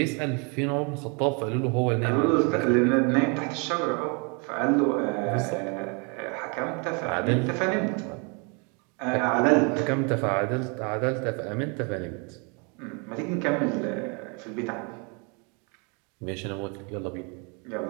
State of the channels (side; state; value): left; quieter; 33.8 dB